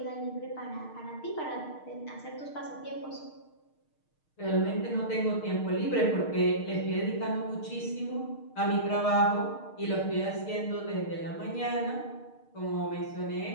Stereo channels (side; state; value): right; late; 6.5 ms